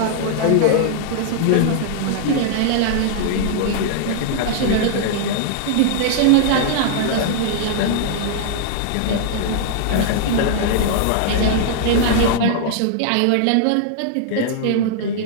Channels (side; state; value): both; different; correlation -0.01